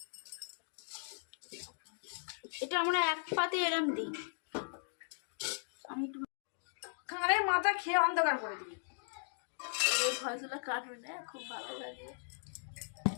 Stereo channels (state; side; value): silent; right; digital silence